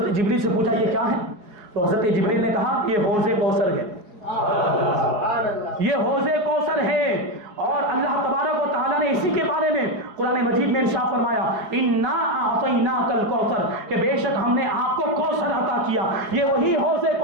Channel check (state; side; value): late; left; 4.8 ms